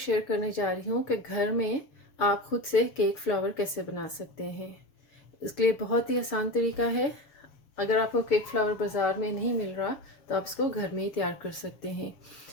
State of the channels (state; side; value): late; right; 7.1 ms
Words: करने जा रही हूँ कि घर में आप खुद से केक फ्लावर कैसे बना सकते हैं। इसके लिए बहुत ही आसान तरीका है। अगर आपको केक फ्लावर बाज़ार में नहीं मिल रहा तो आप इसको घर में ही तैयार कर सकते हैं।